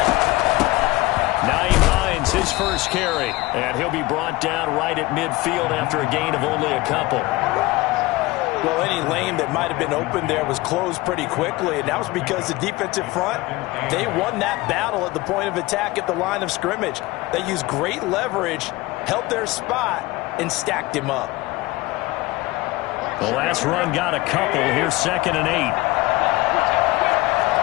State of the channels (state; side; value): quieter; right; 20.6 dB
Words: His first carry, and he'll be brought down right at midfield after a gain of only a couple. Well, any lane that might have been open there was closed pretty quickly, and that was because the defensive front, they won that battle at the point of attack at the line of scrimmage. They used great leverage, held their spot, and stacked him up. The last run got a couple. Here's 2nd and 8.